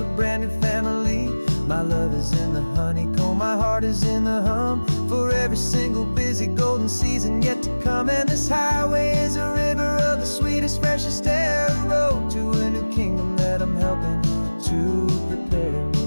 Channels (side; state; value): both; inverted; correlation -1.00